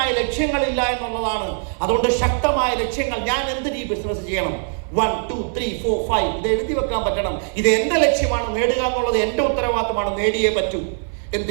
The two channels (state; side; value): silent; left; 63 dB below the other